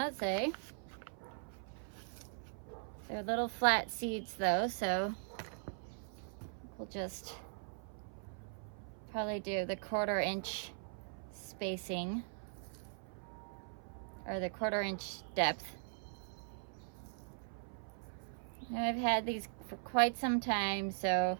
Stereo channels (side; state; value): left; silent; 51 dB below the other